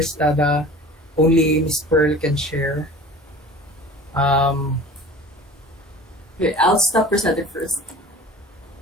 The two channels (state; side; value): normal; both; correlation 0.40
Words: The only Miss Pearl can share. Okay, I'll stop presenting first.